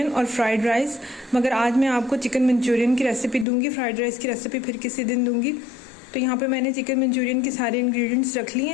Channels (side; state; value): right; drops out; at 3.5 s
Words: और फ्राइड राइस। मगर आज मैं आपको चिकन मंचूरियन की रेसिपी दूंगी, फ्राइड राइस की रेसिपी फिर किसी दिन दूंगी। तो यहाँ पे मैंने चिकन मंचूरियन की सारे इंग्रेडिएंट्स रख लिए